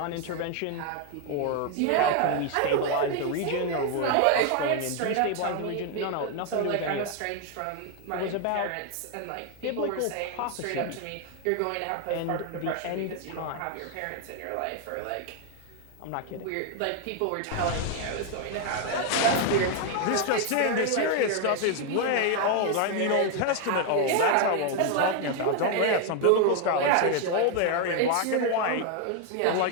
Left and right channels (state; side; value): different; both; correlation 0.01